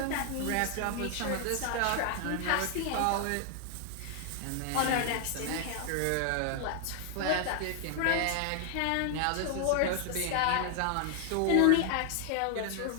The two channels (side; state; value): both; different; correlation 0.00